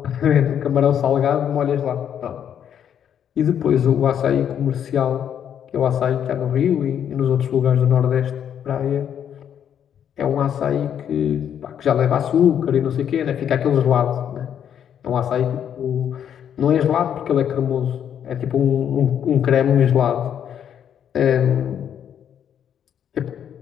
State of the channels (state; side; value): quieter; right; 9.0 dB